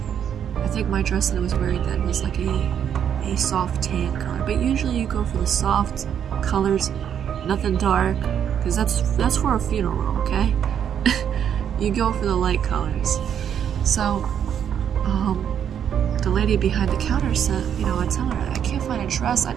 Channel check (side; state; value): left; quieter; 8.8 dB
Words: I think my dress that I was wearing then was like a soft tan color. But usually you go for the soft colors, nothing dark, because that's for a funeral, okay? You go for the light colors. So, the lady behind the counter said, I tell her, I can't find a dress. I